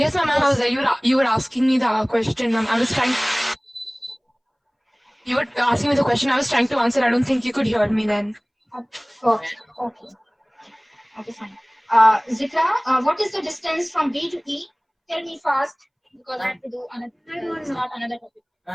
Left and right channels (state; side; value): identical; both; correlation 1.00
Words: ma'am, I was there. You were asking me the question, ma'am. I was trying. You were asking me the question. I was trying to answer. I don't think you could hear me then. Okay, okay. Okay, fine. Zikra, what is the distance from B to E? Tell me fast, because I have to do another, start another